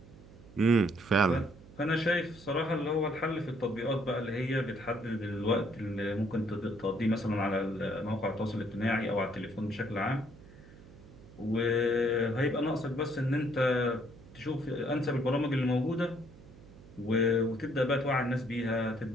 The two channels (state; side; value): noise; right; hum, 20 dB below the sound